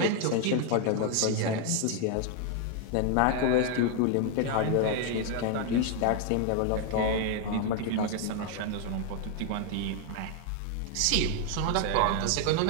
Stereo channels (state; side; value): different; both; correlation 0.00